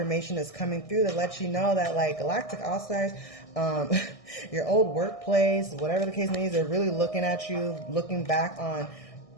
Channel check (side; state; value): right; late; 1.6 ms